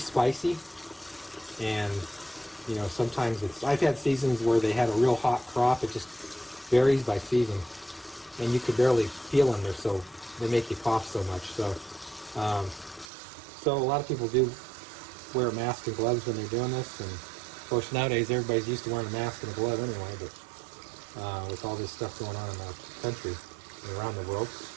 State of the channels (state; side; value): drops out; left; at 13.1 s